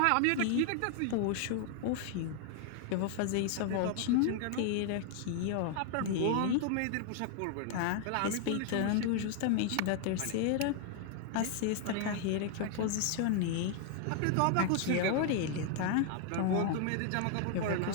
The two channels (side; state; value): both; different; correlation 0.00